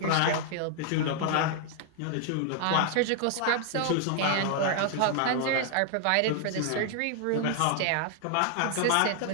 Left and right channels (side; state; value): both; different; correlation 0.00